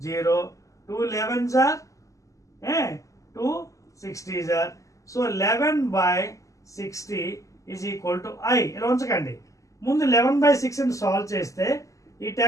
0 2 11s are 2 60s are. So 11/60 is equal to I. ఇలా ఉంచకండి. ముందు 11/6 సాల్వ్ చేస్తే ఈ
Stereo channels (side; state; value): right; late; 0.16 ms